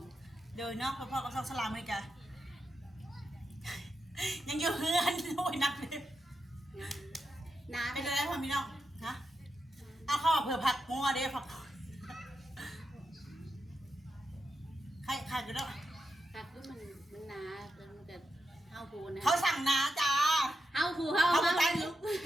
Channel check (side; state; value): both; normal; correlation 0.87